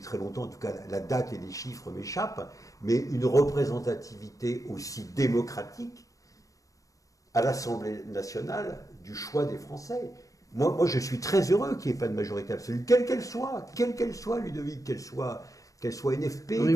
très longtemps, en tout cas la date et les chiffres m'échappent, mais une représentativité aussi démocratique à l'Assemblée nationale du choix des Français. Moi je suis très heureux qu'il n'y ait pas de majorité absolue, quelle qu'elle soit, Ludovic, qu'elle soit NFP.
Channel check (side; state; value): right; late; 0.16 ms